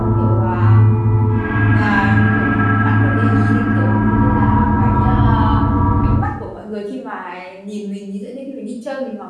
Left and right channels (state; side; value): identical; both; correlation 1.00